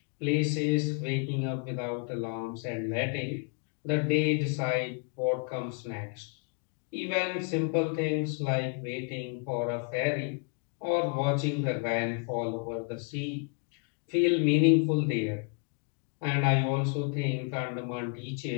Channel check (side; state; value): right; quieter; 39.4 dB